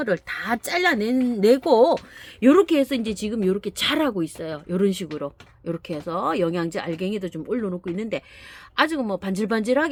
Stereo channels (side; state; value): both; identical; correlation 1.00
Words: 다 잘라내고 요렇게 해서 이제 지금 요렇게 자라고 있어요. 요런 식으로 요렇게 해서 영양제 알갱이도 좀 올려놓고 있는데 아직은 뭐